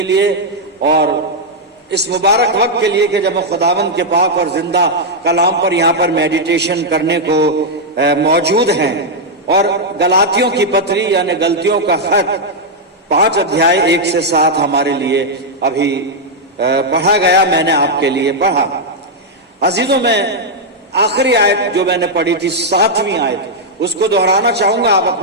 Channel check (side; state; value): both; normal; correlation -0.03